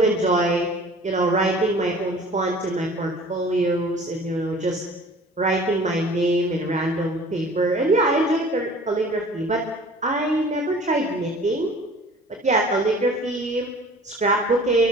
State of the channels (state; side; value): normal; both; correlation 0.47